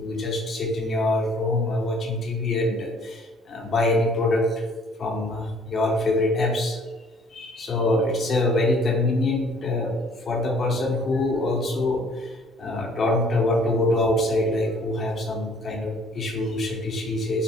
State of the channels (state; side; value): normal; both; correlation 0.57